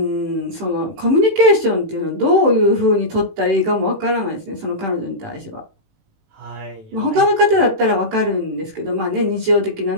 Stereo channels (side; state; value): left; late; 18 ms